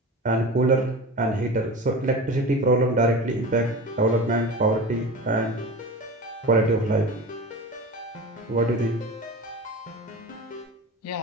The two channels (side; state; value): both; normal; correlation 0.32